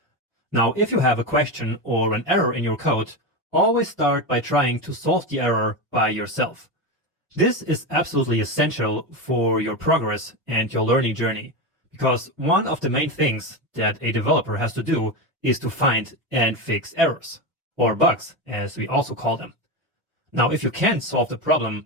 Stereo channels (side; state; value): both; normal; correlation 0.16